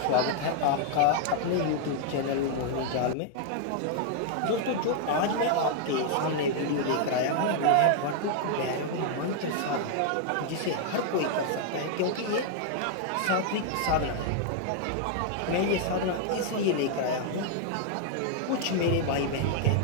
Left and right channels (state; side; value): different; both; correlation 0.00